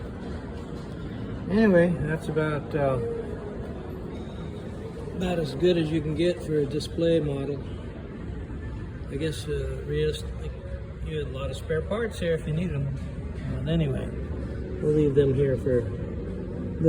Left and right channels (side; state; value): both; identical; correlation 1.00